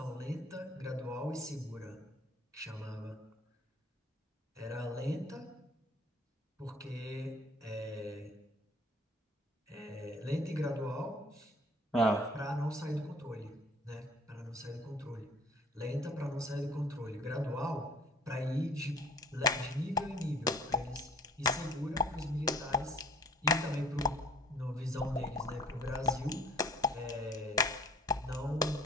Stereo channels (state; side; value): normal; both; correlation 0.51